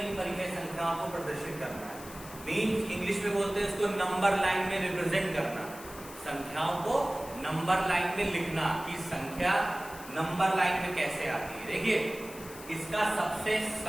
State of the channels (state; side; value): noise; left; hiss, 16 dB below the sound